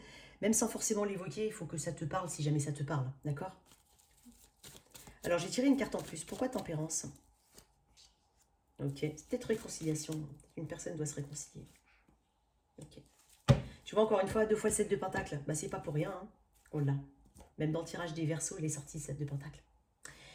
Même sans forcément l'évoquer, il faut que ça te parle si jamais ça te parle. D'accord? Alors, j'ai tiré une carte en plus. Pourquoi tempérance? Ok. C'est peut-être réconciliation. Une personne doit se réconcilier. Ok. Tu vois, encore une fois, 2 fois le 7 de pentacle. Bah, c'est pas pour rien. On l'a. Même dans le tirage des Verseaux, il est sorti 7 de pentacle.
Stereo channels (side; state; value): both; identical; correlation 1.00